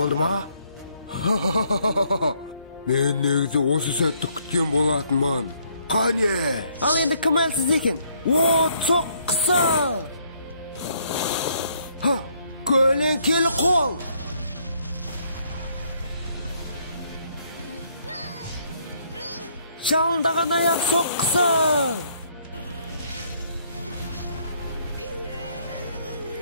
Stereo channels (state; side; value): inverted; both; correlation -0.68